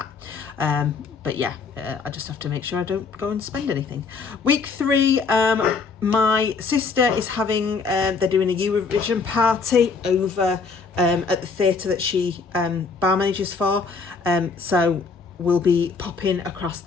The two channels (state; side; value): quieter; right; 4.7 dB